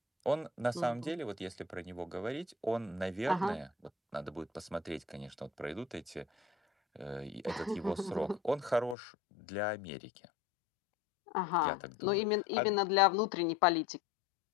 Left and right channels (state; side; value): drops out; right; at 9.0 s